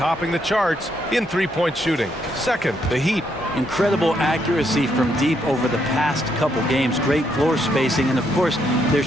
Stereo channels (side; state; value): both; normal; correlation 0.75